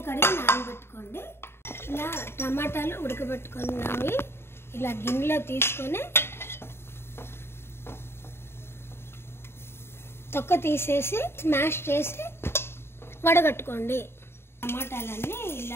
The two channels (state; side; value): late; right; 0.12 ms